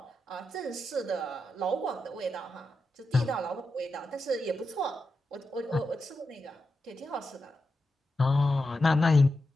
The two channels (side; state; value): both; normal; correlation 0.88